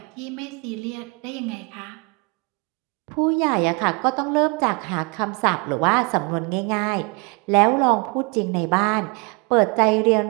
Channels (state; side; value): quieter; left; 29.9 dB